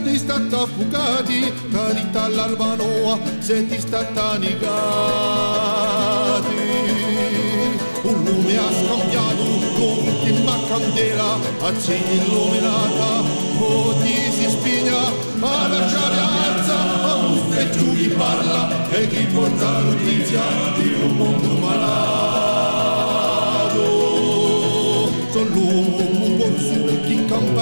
stati affogati, carità all'Albanoa, siete stati annegati. Un lume ha scambiato con l'ultima candela, accende illuminata, o ti si spigna, ma lasciare alza, e giù chi parla, e chi porta notizia di un mondo malato. Sono l'uomo corso, chi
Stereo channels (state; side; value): inverted; both; correlation -1.00